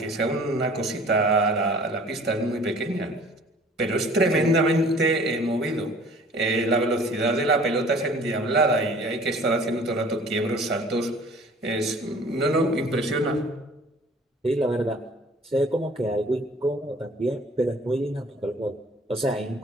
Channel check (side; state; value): both; normal; correlation 0.50